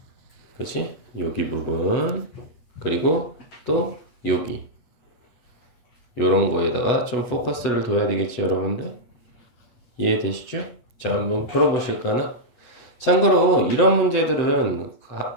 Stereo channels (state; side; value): late; right; 8.2 ms